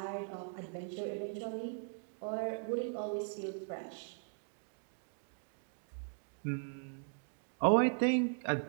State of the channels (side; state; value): left; silent; digital silence